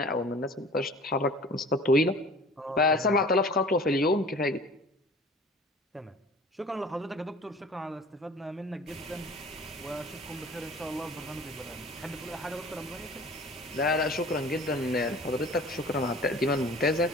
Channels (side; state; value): both; normal; correlation 0.45